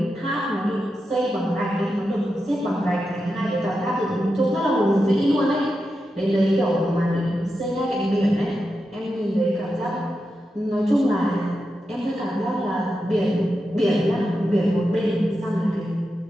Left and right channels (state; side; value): normal; both; correlation 0.88